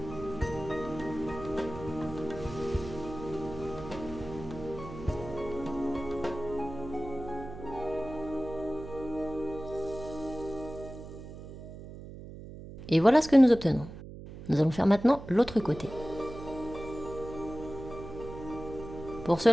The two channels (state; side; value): noise; right; hum, 13 dB below the sound